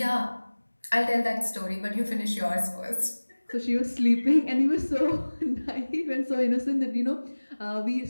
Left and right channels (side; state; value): both; inverted; correlation -1.00